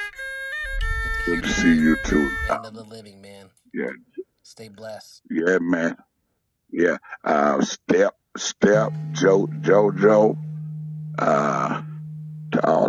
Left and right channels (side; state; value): both; identical; correlation 1.00